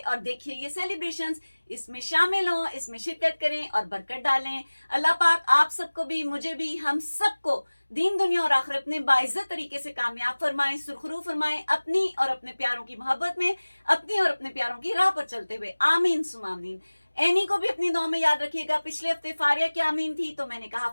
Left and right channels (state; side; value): inverted; both; correlation -1.00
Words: देखिए ये सेलिब्रेशन। इसमें शामिल हों, इसमें शिरकत करें और बरकत डालें। अल्लाह पाक आप सबको भी, मुझे भी, हम सबको दीन दुनिया और आखिरत में बाइज्जत तरीके से कामयाब फरमाएं, सुरखरू फरमाएं, अपनी और अपने प्यारों की मोहब्बत में, अपनी और अपने प्यारों की राह पर चलते हुए। आमीन सुमामीन। एनी को भी अपनी दुआ में याद रखिएगा। पिछले हफ्ते फारिया की आमीन थी तो मैंने कहा